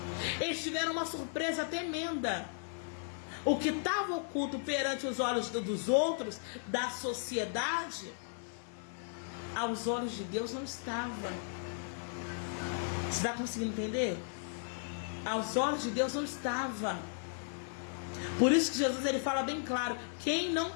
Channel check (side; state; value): right; silent; 54 dB below the other